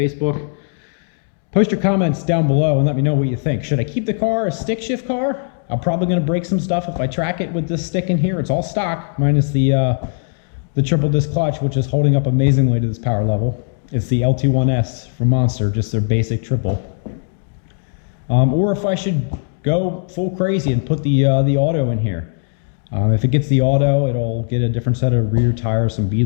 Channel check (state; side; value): silent; right; digital silence